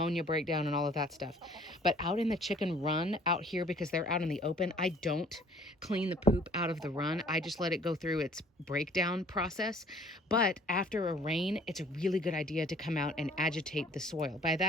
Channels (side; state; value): both; normal; correlation 0.55